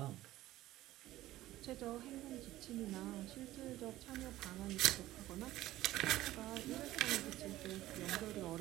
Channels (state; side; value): quieter; left; 15.6 dB